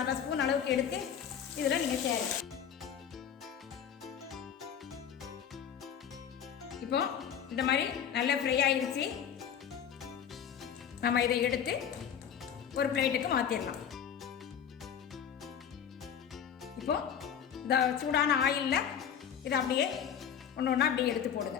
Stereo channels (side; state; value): right; quieter; 8.4 dB